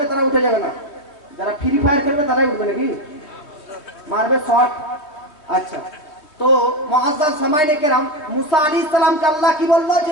তারা উঠে যাবে না, যারা ফ্রি ফায়ার খেলবে তারাই উঠবে নাকি, মারবে শর্ট। আচ্ছা, তো মুআজ্জাজ সামাইনে কেরাম, মুসা আলাইহিস সালামকে আল্লাহ কি বললো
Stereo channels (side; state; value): right; late; 3.3 ms